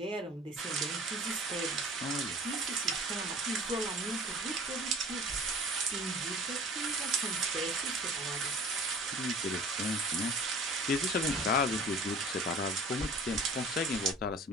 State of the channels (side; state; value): both; normal; correlation 0.45